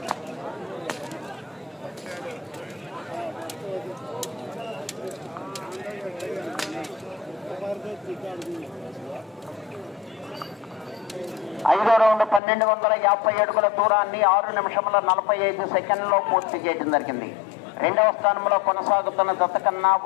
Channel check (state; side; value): drops out; right; at 12.4 s